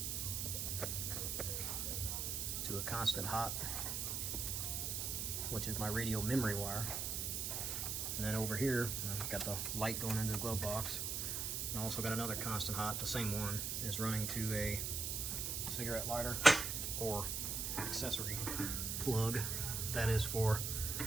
to a constant hot, which is my radio memory wire. And then over here, I've got the light going into the glove box. And I also got another constant hot, the same one, is running to a cigarette lighter or accessory plug. That is for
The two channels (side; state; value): right; noise; hiss, 1 dB below the sound